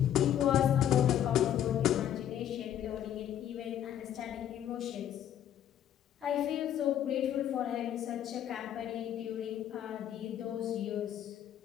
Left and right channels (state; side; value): quieter; right; 10.6 dB